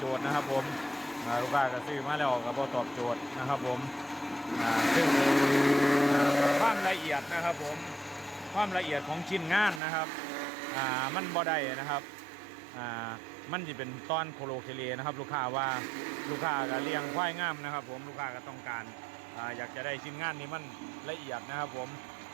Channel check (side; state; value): left; drops out; at 9.8 s